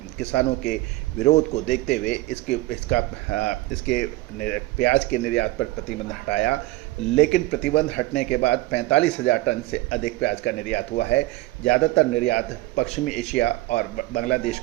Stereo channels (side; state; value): left; quieter; 18.8 dB